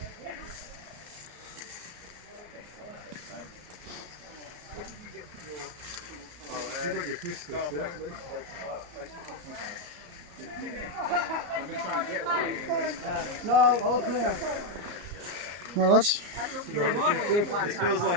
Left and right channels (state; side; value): late; left; 34 ms